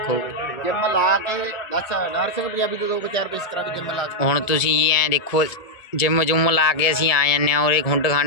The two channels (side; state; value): right; late; 1.7 ms